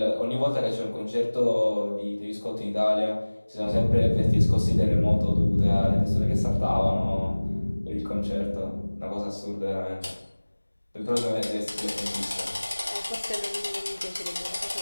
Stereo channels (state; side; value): inverted; both; correlation -1.00